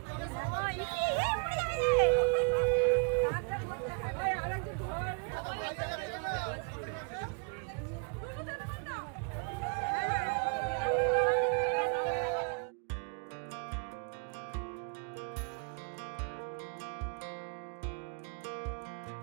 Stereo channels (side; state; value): left; quieter; 36.6 dB